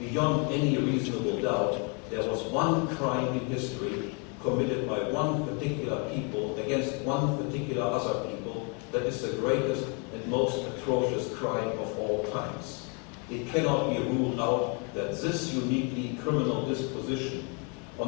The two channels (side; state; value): right; quieter; 35.2 dB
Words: any reasonable doubt, there was one crime in history committed by one particular people against one particular other people that is the greatest and most atrocious crime of all times. It cannot be ruled out that this uniquely criminal disposition